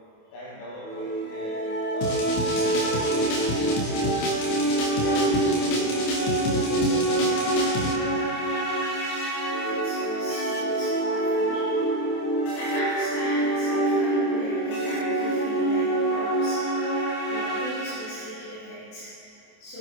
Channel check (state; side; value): late; right; 28 ms